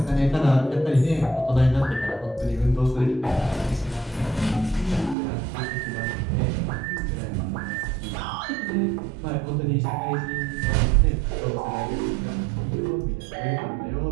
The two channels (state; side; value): drops out; left; at 5.2 s